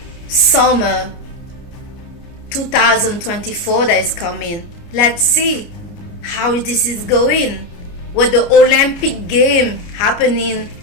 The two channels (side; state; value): right; late; 29 ms